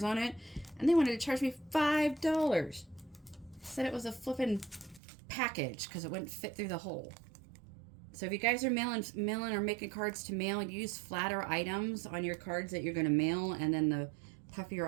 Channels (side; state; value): left; drops out; at 5.0 s